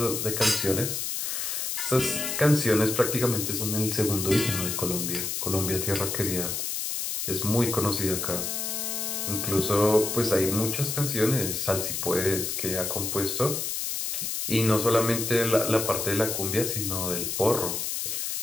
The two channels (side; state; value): left; noise; hiss, 2 dB below the sound